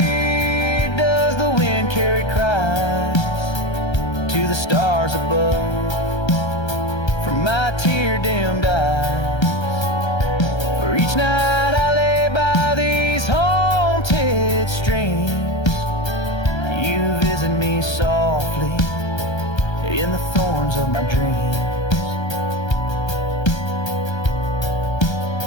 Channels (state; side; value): late; right; 1.3 ms